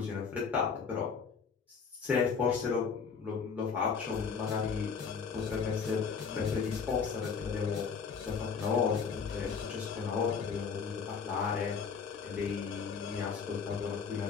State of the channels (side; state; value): right; quieter; 5.8 dB